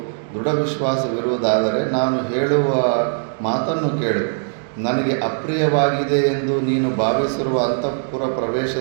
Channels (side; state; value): left; silent; digital silence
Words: ದೃಢ ವಿಶ್ವಾಸವಿರುವುದಾದರೆ ನಾನು ಹೇಳುವ ಮಾತನ್ನು ಕೇಳು. ನನಗೆ ಅಪ್ರಿಯವಾಗಿದೆ ಎಂದು ನೀನು ಭಾವಿಸಿರುವ ಅಂತಃಪುರ